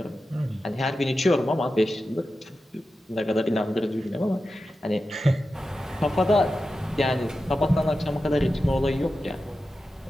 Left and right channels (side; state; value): both; normal; correlation 0.92